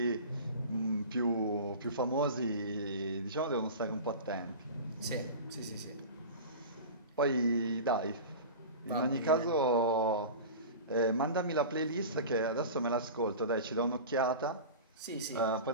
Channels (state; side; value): inverted; both; correlation -0.33